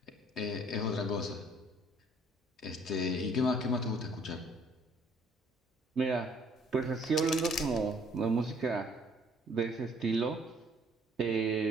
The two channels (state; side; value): normal; both; correlation 0.60